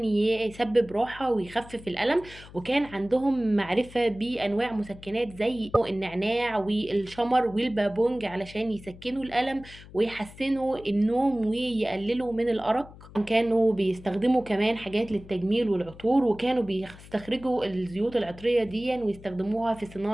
يسبب راحة ويخفف الألم. وكان عندهم معرفة بأنواع مسكنات زي النعناع والشمر والبابونج علشان يسكنوا الألم ويحسنوا النوم ويقللوا من الأرق. كانوا بيستخدموا كمان حاجات للتجميل والعطور، وكانوا بيستخرجوا الزيوت العطرية دي ويستخدموها في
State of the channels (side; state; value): left; noise; hum, 19 dB below the sound